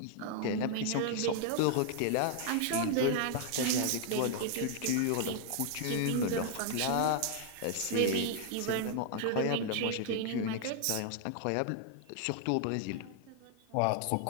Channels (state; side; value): different; both; correlation 0.00